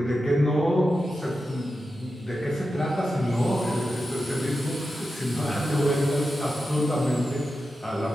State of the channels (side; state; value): both; normal; correlation 0.90